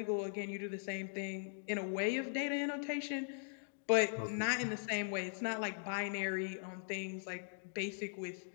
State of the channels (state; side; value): silent; right; digital silence